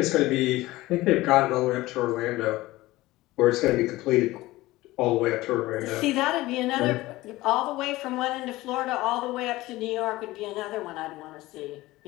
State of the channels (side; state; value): right; quieter; 18.4 dB